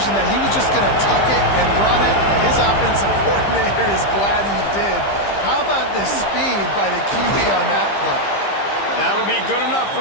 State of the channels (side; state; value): right; late; 15 ms